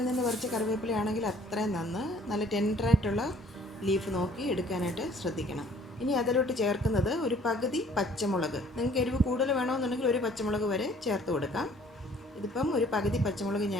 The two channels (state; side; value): normal; both; correlation 0.57